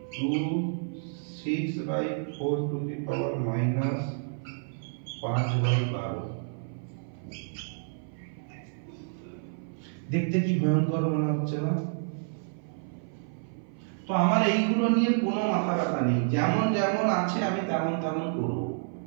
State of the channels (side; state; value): left; silent; 56 dB below the other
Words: 2 6/4 to the power minus 5/12। দেখতে কি ভয়ঙ্কর মনে হচ্ছে না? তো আমার এইগুলো নিয়ে কোনো মাথা ব্যথা নেই, যেমন যেমন আছে আমি তেমন তেমন করব।